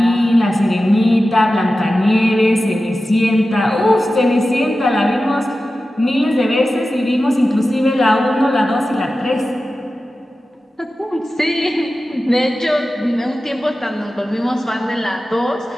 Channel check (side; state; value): both; normal; correlation 0.94